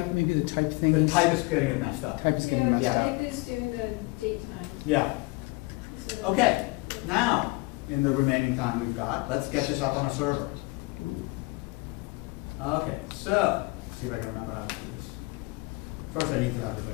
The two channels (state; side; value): quieter; right; 25.3 dB